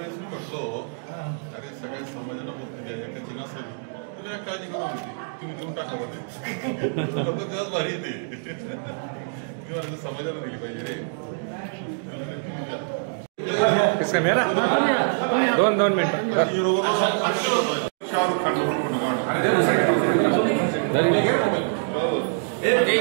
मी म्हटलो, अरे सगळ्या समाजाला मुक्ती द्या, एकाची नसेल तुम्ही काळजी करू नका, तुम्ही देऊन टाका बरं. लोक तेव्हाच भारी येते. मी म्हणाल समाजाला दिली पाहिजे रे. किसका मेरा 2 मिनिट. शाहरुख खान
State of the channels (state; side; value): silent; left; digital silence